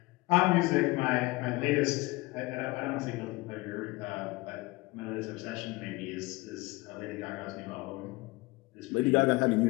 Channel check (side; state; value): right; quieter; 22.3 dB